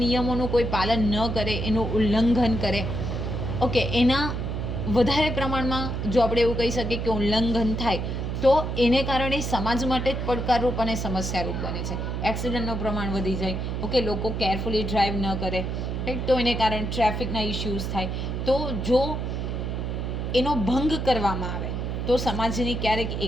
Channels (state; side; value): noise; right; hum, 3 dB below the sound